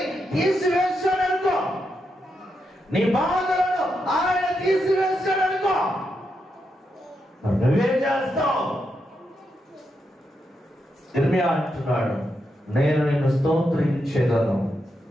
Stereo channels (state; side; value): normal; both; correlation 0.84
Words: తీసివేశాడనుకో, నీ బాధలను ఆయన తీసివేశాడనుకో, నువ్వేం చేస్తావు? ఇర్మియా అంటున్నాడు, నేను నిన్ను స్తోత్రించేదను,